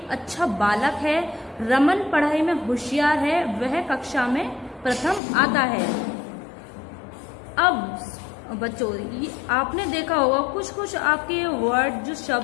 अच्छा बालक है। रमन पढ़ाई में होशियार है, वह कक्षा में प्रथम आता है। अब बच्चों, आपने देखा होगा कुछ आपके वर्ड जो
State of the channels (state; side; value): drops out; right; at 5.2 s